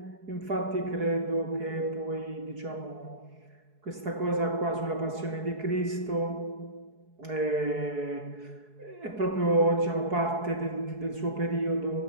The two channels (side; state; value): left; late; 4.7 ms